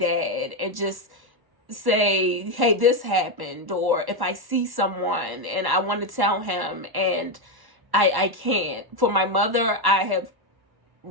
and just say, hey, this happened. Or if I see someone and I want to tell him and I can't. For my mother, I have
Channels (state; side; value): late; left; 1.1 ms